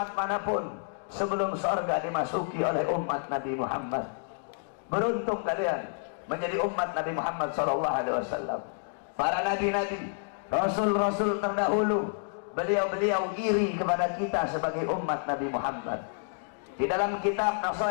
manapun sebelum sorga dimasuki oleh umat Nabi Muhammad. Beruntung kalian menjadi umat Nabi Muhammad SAW. Para nabi-nabi, rasul-rasul terdahulu, beliau-beliau iri kepada kita sebagai umat Nabi Muhammad. Di dalam kitab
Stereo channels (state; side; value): silent; right; digital silence